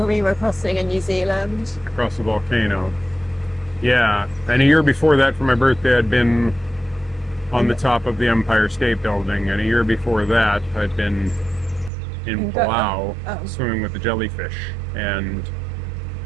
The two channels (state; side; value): drops out; left; at 11.9 s